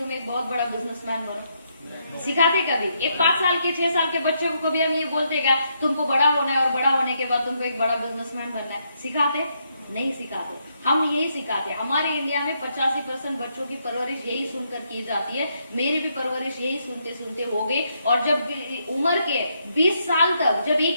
एक बहुत बड़ा बिजनेसमैन बनो? सिखाते कभी? एक 5 साल के 6 साल के बच्चों को भी हम ये बोलते क्या तुमको बड़ा होना है और बड़ा होने के बाद तुमको एक बड़ा बिजनेसमैन बनना है? सिखाते? नहीं सिखाते। हम यही सिखाते हैं। हमारे इंडिया में 85% बच्चों की परवरिश यही सुनकर की जाती है। मेरी भी परवरिश यही सुनते सुनते हो गई, और जब उम्र के 20 साल तक जब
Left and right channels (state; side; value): inverted; both; correlation -0.77